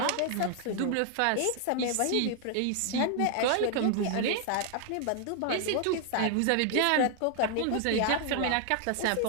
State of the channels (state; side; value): different; both; correlation 0.00